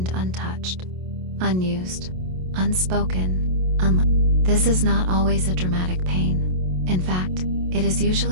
untouched, unused, unspoken, unlived. This is not always a dramatic pain. In fact, it is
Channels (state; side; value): late; left; 27 ms